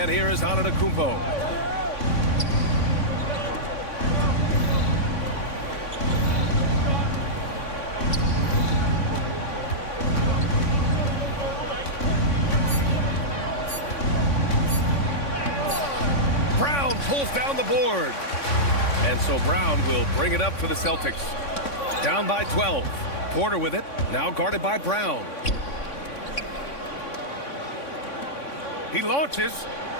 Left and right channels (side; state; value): right; late; 3.6 ms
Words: here is Antetokounmpo. Brown pulls down the board. And so Brown will bring it up for the Celtics. Down by 12. Porter with it. Now guarded by Brown. He launches.